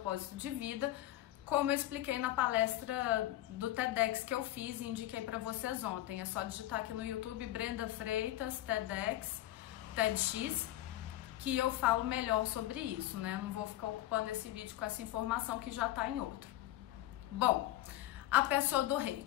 de vida, como eu expliquei na palestra do TEDx que eu fiz e indiquei para vocês ontem. É só digitar aqui no YouTube Brenda Freitas, TEDx, TEDx, que eu falo melhor sobre isso, né? Não vou ficar ocupando esse vídeo com essa informação que já tá em outro. Bom, a pessoa do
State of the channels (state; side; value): quieter; right; 14.8 dB